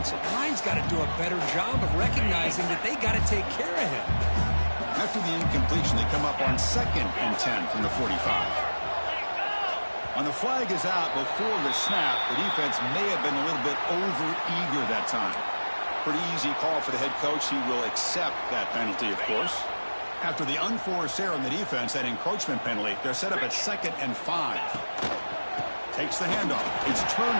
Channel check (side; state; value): both; inverted; correlation -1.00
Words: line's got to do a better job of recognizing that they got to take care of him. After the incompletion, they come up on 2nd and 10 from the 45. On the flag is out before the snap. The defense may have been a little bit over-eager that time. Pretty easy call for the head coach. He will accept that penalty, of course. After the unforced error on the defense, that encroachment penalty, they're set up at 2nd and 5. Takes the handoff. It's